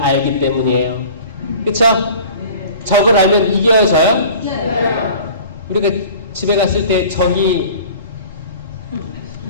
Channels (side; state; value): both; inverted; correlation -0.44